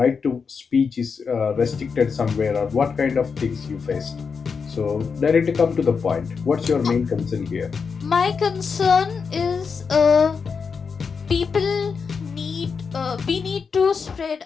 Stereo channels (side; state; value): right; quieter; 5.6 dB